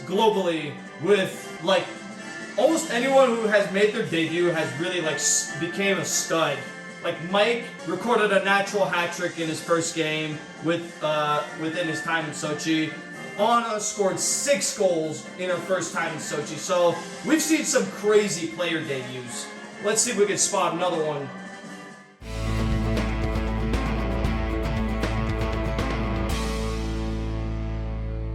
globally with, like, almost anyone who has made their debut has really, like, became a stud. Like, Mike recorded a natural hat trick in his first game within his time in Sochi. Anna scored 6 goals in her first time in Sochi. So, we've seen some crazy player debuts. Let's see if we can spot another one.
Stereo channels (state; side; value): identical; both; correlation 1.00